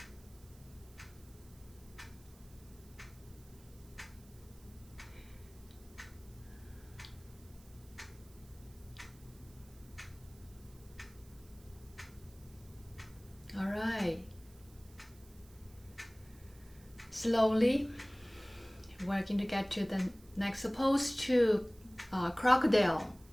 All right. Slowly, we're going to get to the next pose, to crocodile.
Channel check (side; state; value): right; noise; hiss, 26 dB below the sound